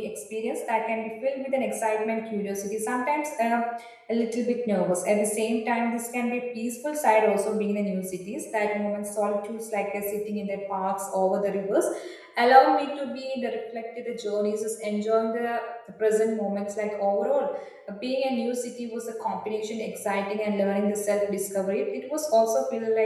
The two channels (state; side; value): identical; both; correlation 1.00